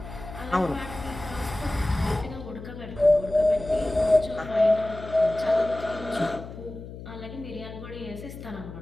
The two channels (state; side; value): noise; left; hum, 12 dB below the sound